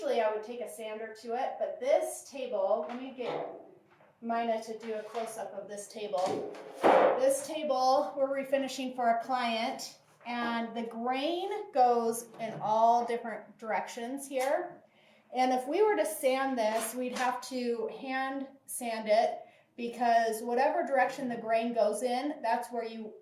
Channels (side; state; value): both; identical; correlation 1.00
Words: I would take a sander to it, but this table, let me get Mina to do a close-up of this table. This table we're refinishing for a client, and the grain goes in all different directions here. And if we were to sand this, we'd have to hand sand it because whatever direction the grain goes in, that's where you